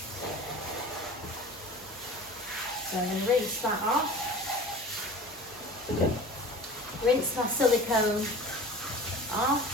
So I'm going to rinse that off. Rinse my silicone off.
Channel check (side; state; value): both; normal; correlation 0.38